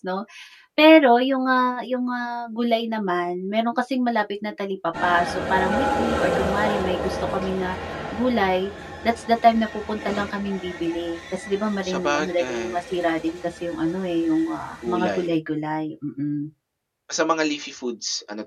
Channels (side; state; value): both; identical; correlation 1.00